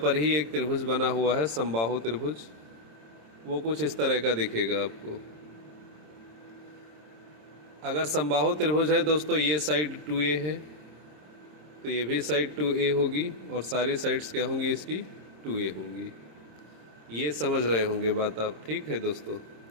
ही एक त्रिभुज बना हुआ है, समबाहु त्रिभुज। वो कुछ इस तरह का दिखेगा आपको। अगर समबाहु त्रिभुज है दोस्तों, ये साइड 2a है तो ये भी साइड 2a होगी और सारी साइड्स क्या होंगी, इसकी 2a होंगी। ये समझ रहे होंगे बात आप, ठीक है दोस्तों?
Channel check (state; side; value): late; left; 26 ms